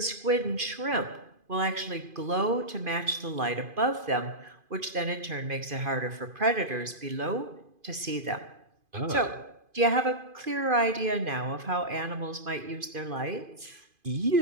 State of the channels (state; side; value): late; left; 2.5 ms